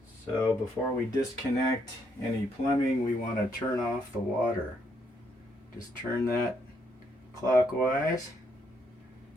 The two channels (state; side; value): normal; both; correlation 0.74